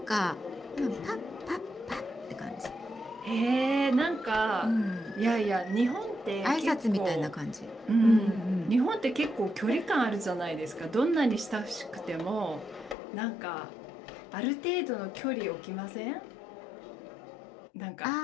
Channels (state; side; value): drops out; right; at 13.0 s